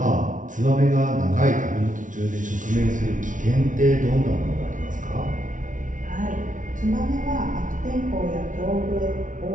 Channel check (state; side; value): late; left; 0.37 ms